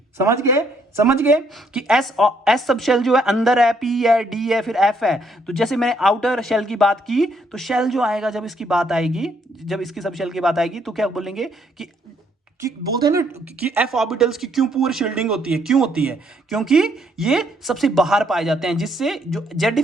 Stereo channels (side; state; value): both; normal; correlation 0.70